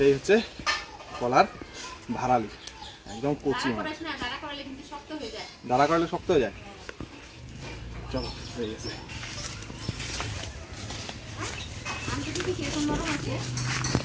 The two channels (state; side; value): identical; both; correlation 1.00